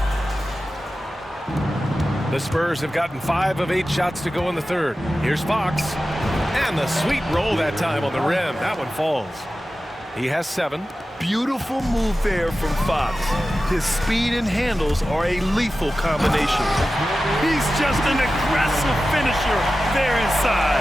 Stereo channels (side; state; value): both; normal; correlation 0.94